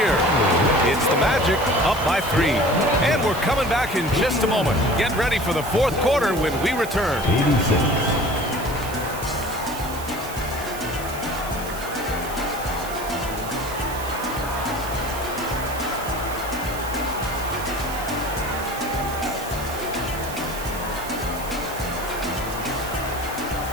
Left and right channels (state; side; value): noise; right; hiss, 12 dB below the sound